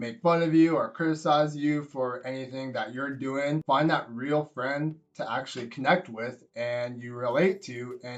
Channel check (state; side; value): identical; both; correlation 1.00